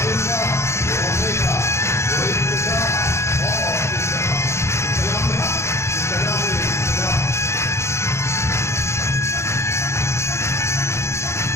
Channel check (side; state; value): right; late; 0.13 ms